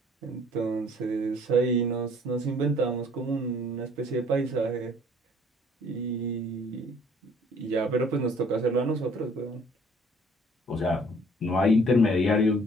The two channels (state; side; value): normal; both; correlation 0.57